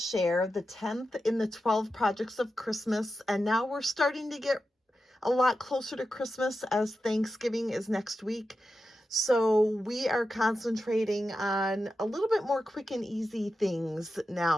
the 10th in the 12 projects of Christmas, and now we're starting to get a lot closer to Christmas as Thanksgiving is next week. So we are concentrating on a little bit more quick and easy things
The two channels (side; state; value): both; normal; correlation 0.90